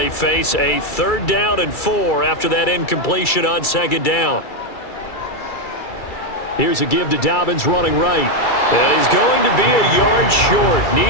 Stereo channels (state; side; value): late; right; 2.3 ms